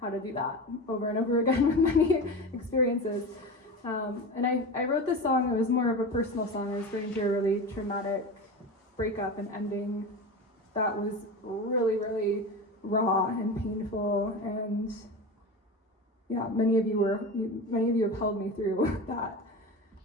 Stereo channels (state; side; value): normal; both; correlation 0.27